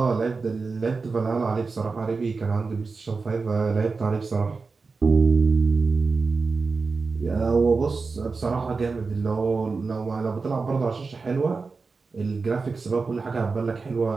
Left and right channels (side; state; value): left; quieter; 4.4 dB